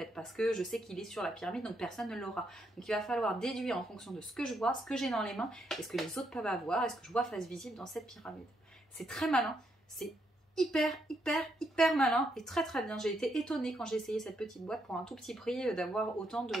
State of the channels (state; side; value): normal; both; correlation 0.77